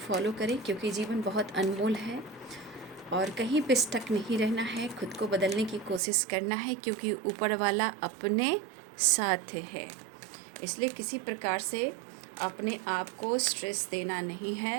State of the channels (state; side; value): drops out; left; at 6.0 s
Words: करें, क्योंकि जीवन बहुत अनमोल है और कहीं पे स्टक नहीं रहना है। खुद को बदलने की कोशिश करना है, क्योंकि ऊपर वाला अपने साथ है। इसलिए किसी प्रकार से अपने आप को स्ट्रेस देना नहीं